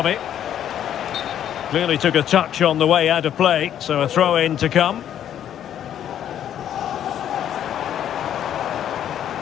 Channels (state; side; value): quieter; right; 10.3 dB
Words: it. Clearly took a touch on the way out of play, so a throw-in to come.